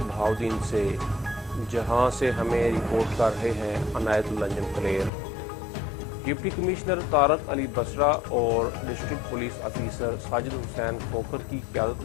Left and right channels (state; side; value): drops out; right; at 5.1 s